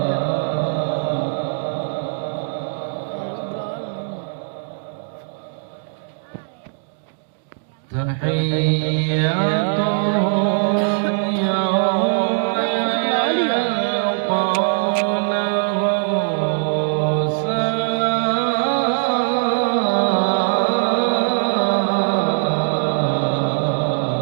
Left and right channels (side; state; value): left; silent; digital silence